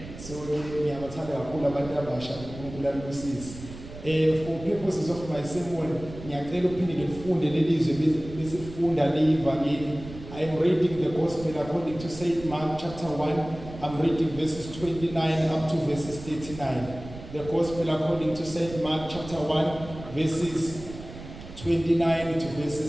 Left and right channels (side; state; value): right; noise; rumble, 14 dB below the sound